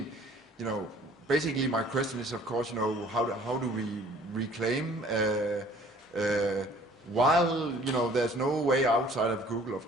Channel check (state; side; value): normal; both; correlation 0.54